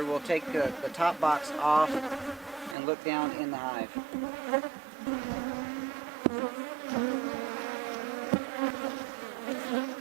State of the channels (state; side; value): drops out; left; at 2.8 s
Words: We'll take the top box off and look down in the hive.